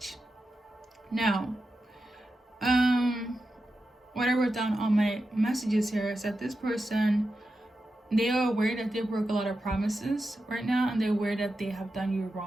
Now, what I wrote down on my messages here is that this person, they are aware that they broke a lot of promises right now, and they're aware that they have done you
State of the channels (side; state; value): both; normal; correlation 0.90